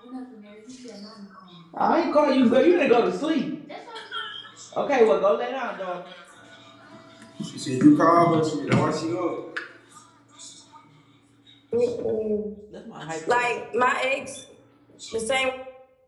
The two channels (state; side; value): identical; both; correlation 1.00